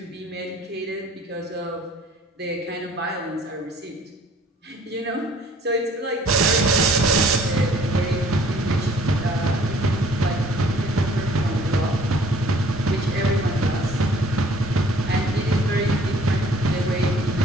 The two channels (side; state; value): both; normal; correlation 0.56